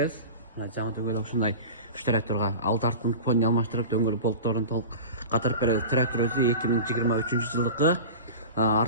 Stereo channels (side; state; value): both; inverted; correlation -0.33